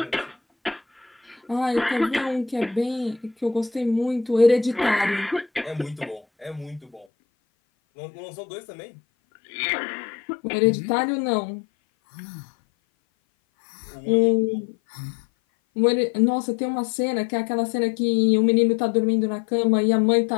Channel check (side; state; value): right; drops out; at 7.1 s